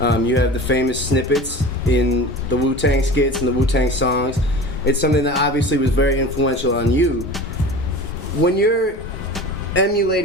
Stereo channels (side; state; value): both; normal; correlation 0.35